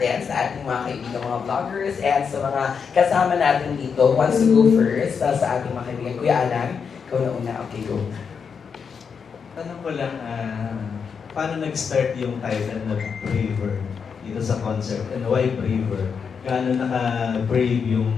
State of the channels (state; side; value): quieter; right; 6.2 dB